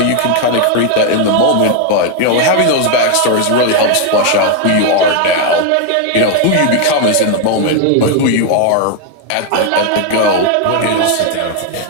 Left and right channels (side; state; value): both; different; correlation 0.01